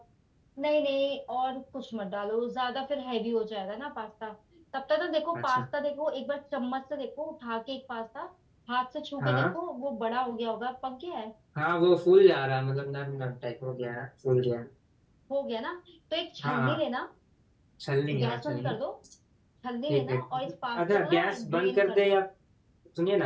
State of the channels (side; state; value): both; identical; correlation 1.00